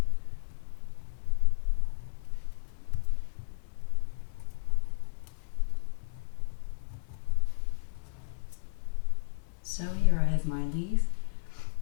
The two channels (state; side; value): silent; right; digital silence